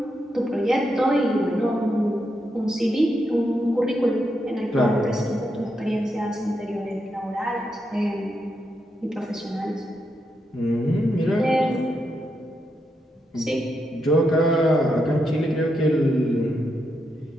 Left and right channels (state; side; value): normal; both; correlation 0.83